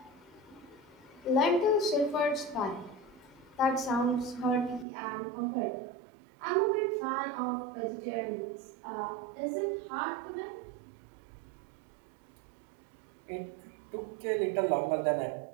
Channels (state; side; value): drops out; left; at 4.9 s